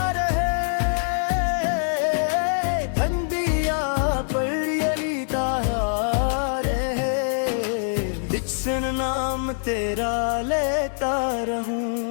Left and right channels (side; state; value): right; silent; 63 dB below the other